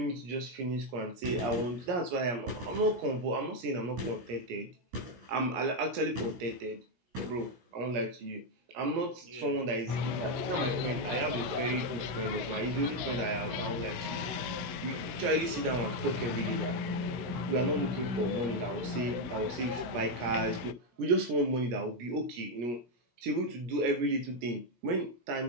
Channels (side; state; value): left; late; 17 ms